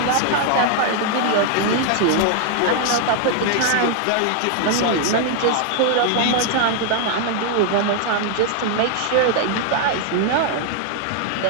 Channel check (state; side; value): different; both; correlation 0.00